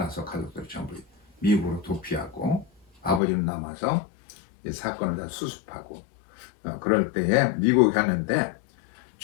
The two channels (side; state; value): right; drops out; at 3.2 s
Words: 가족들이 전부 미국으로 도피하고 아버지는 남아서 이 사건을 다 수습하고 그럴 때에 미국에 가는데